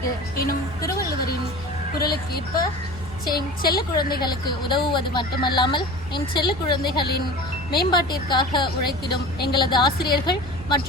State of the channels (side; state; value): both; normal; correlation 0.36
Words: எனும் திருவள்ளுவரின் குரலுக்கு ஏற்ப செல்ல குழந்தைகளுக்கு உதவுவது மட்டுமல்லாமல் என் செல்ல குழந்தைகளின் மேம்பாட்டிற்காக உழைத்திடும் எங்களது ஆசிரியர்கள்